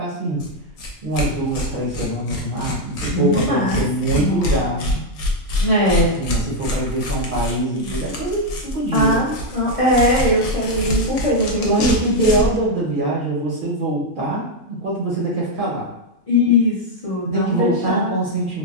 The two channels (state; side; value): normal; both; correlation 0.01